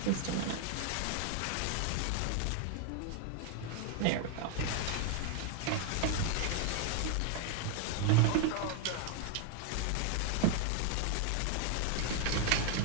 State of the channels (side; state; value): both; different; correlation 0.00